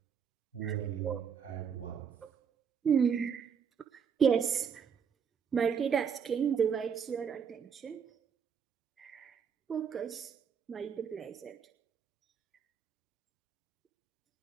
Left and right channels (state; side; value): quieter; left; 7.2 dB